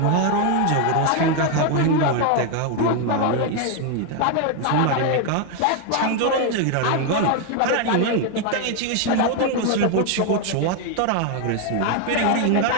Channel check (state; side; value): different; both; correlation 0.01